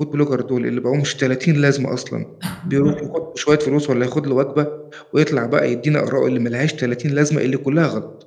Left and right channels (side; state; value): both; identical; correlation 1.00